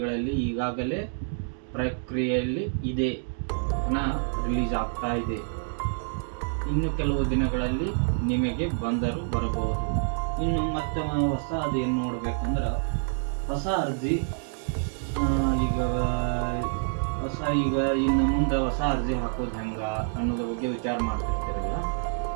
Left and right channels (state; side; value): silent; left; digital silence